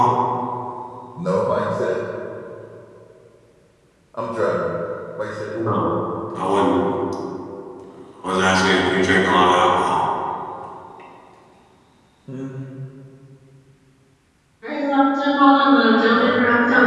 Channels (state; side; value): identical; both; correlation 1.00